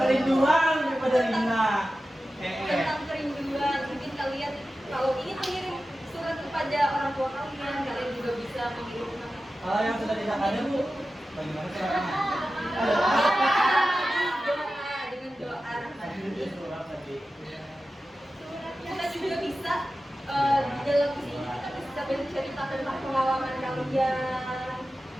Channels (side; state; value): both; normal; correlation 0.94